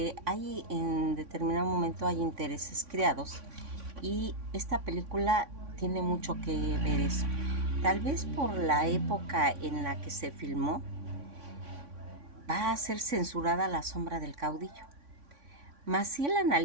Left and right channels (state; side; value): late; left; 3.5 ms